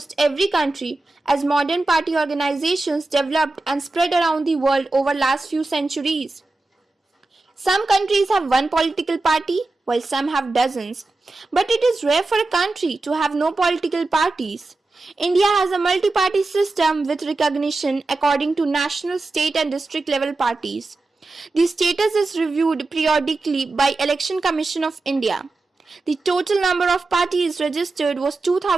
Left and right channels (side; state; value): left; quieter; 3.3 dB